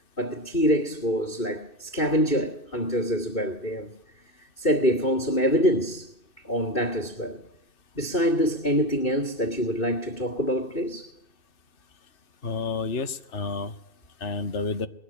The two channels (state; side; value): late; right; 2.6 ms